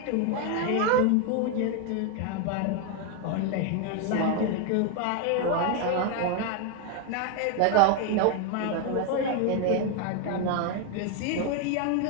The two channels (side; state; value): both; different; correlation 0.01